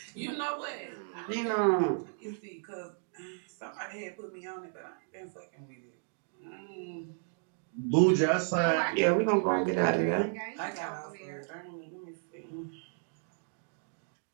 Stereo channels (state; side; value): silent; left; digital silence